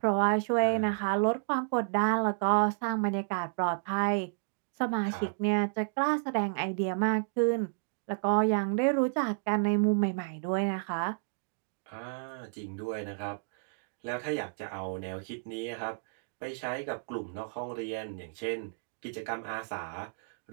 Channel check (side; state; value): left; silent; digital silence